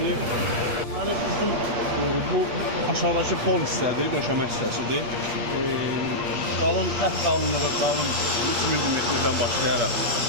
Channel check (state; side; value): late; left; 8.4 ms